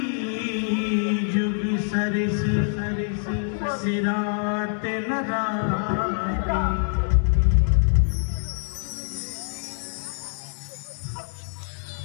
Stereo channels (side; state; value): right; silent; 59 dB below the other